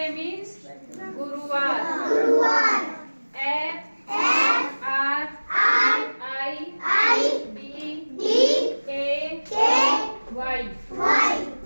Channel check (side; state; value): both; inverted; correlation -1.00